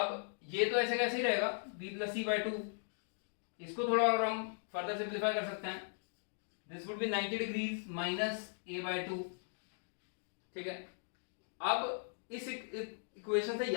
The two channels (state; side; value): silent; right; digital silence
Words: ये तो ऐसे कैसे ही रहेगा b प्लस सी बाई 2। इसको थोड़ा और हम फर्दर सिंप्लीफाई कर सकते हैं। This would B 90 degrees minus a by 2। ठीक है, अब इस इक्वेशन से